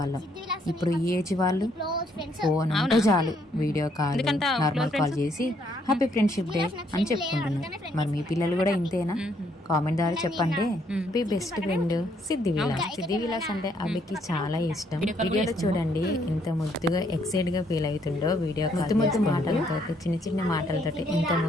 ఇప్పుడు ఈ ఏజ్ వాళ్ళు ఫోన్ ఉంటే చాలు వీడియో కాల్ నార్మల్ కాల్ చేసి హ్యాపీ ఫ్రెండ్షిప్ డే అని చెప్పుకుంటున్నారు. మరి మీ పిల్లలు కూడా ఇంతేనా? కామెంట్ ద్వారా చెప్పండి. మీ బెస్ట్ ఫ్రెండ్ సిద్ధి విలాస్ అంటే అభికి చాలా ఇష్టం. వీడియోలో చూడండి ఎంత ముద్దుగా ఎక్సైట్ గా ఫీల్ అవుతుండో. వీడియో ముద్దు మాటలతో చిన్న మాటలతో ఎంత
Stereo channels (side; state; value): both; normal; correlation 0.70